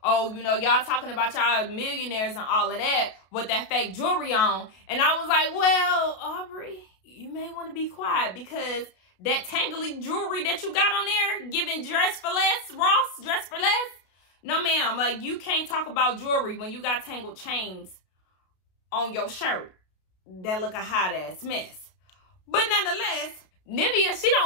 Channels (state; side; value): late; right; 32 ms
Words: oh, you know, y'all talking about y'all millionaires and all of that with that fake jewelry on. And I was like, well, Aubrey, you may want to be quiet because that tangly jewelry that you got on there, giving dress for less, Ross, dress for less. No, ma'am, like, you can't talk about jewelry when you got tangled chains on your shirt that look a hot ass mess. But nonetheless, Nivea, she